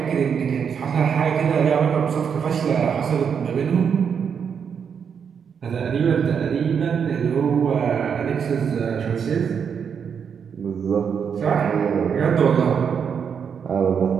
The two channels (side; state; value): left; quieter; 7.1 dB